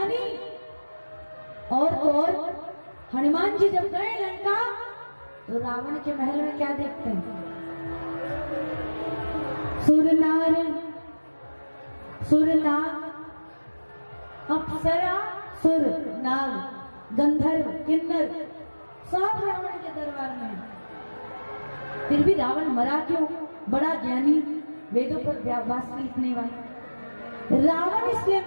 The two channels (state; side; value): inverted; both; correlation -1.00